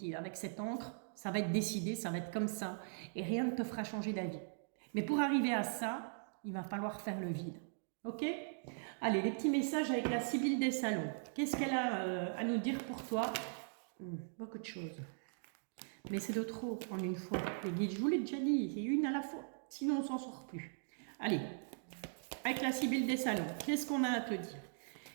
Avec cette encre, ça va être décidé, ça va être comme ça et rien ne te fera changer d'avis. Mais pour arriver à ça, il va falloir faire le vide. Ok? Allez, les petits messages avec la Sibylle des Salons. Qu'est-ce qu'elle a à nous dire pour toi? Beaucoup de choses. Mais c'est de trop en une fois. Les guides, je vous l'ai déjà dit, c'est une à la fois. Sinon, on s'en sort plus. Allez, avec la Sibylle des Salons, qu'est-ce qu'on a à te dire?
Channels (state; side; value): silent; left; digital silence